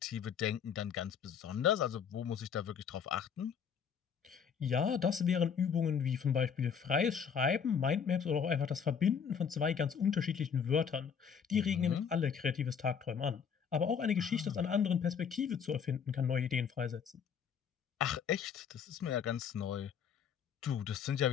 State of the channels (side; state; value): right; quieter; 7.1 dB